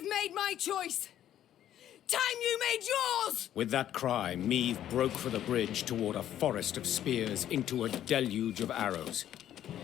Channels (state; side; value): quieter; right; 11.4 dB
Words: made my choice. Time you made yours! With that cry, Meve broke for the bridge toward a forest of spears into a deluge of arrows.